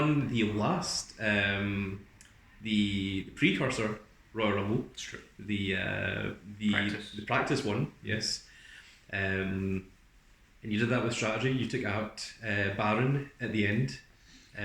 the last the precursor Royal Rumble. It's true. The Practice. practice one. Yes. And and you did that with strategy. You took out Baron at the end.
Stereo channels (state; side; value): identical; both; correlation 1.00